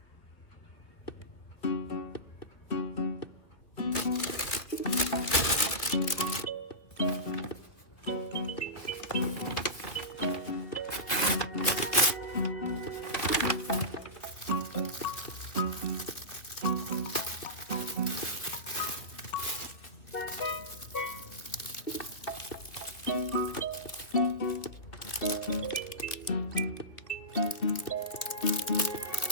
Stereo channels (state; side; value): late; right; 2.8 ms